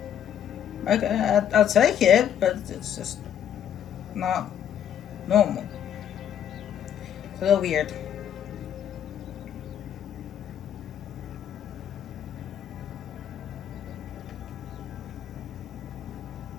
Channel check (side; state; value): right; quieter; 9.5 dB